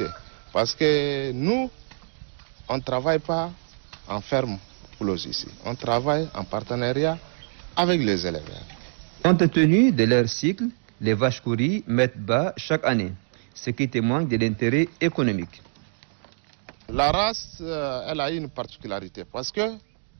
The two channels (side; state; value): left; silent; digital silence